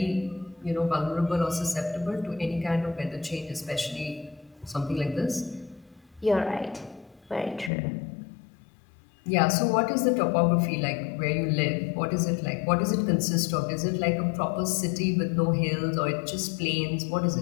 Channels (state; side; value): drops out; right; at 7.7 s